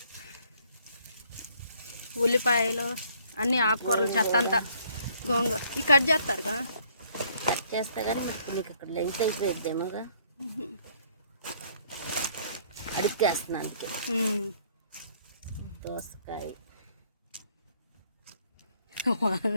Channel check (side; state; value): both; inverted; correlation -0.63